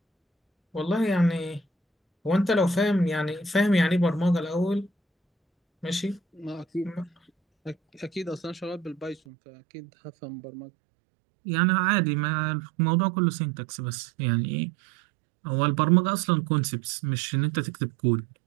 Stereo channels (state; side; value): drops out; left; at 9.2 s